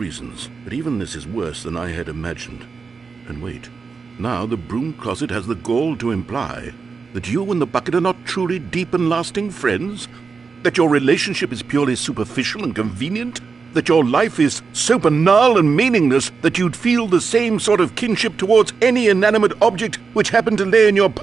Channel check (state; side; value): quieter; left; 5.1 dB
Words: reasons, but even this is worse than I had imagined. And wait, now the broom closet has the gall to imply that you and the bucket are not truly deep and lasting friends? That your relationship is purely superficial and convenient? That your life is so banal and meaningless that you'd feel the same sort of kinship towards any inanimate object which happened to lay in your